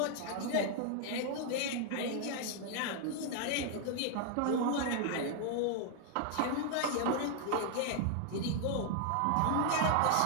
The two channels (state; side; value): different; both; correlation 0.00